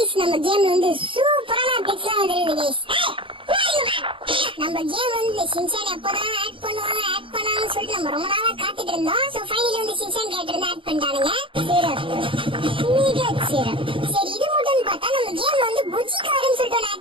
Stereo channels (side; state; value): left; late; 0.25 ms